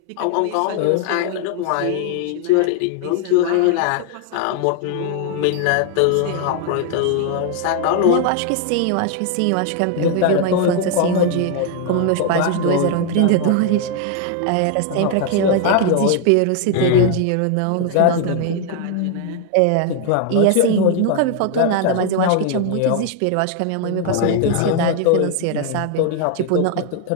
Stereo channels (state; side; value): different; both; correlation 0.00